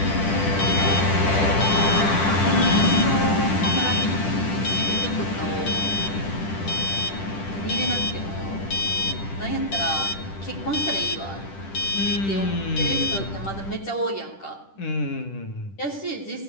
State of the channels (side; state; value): right; late; 10 ms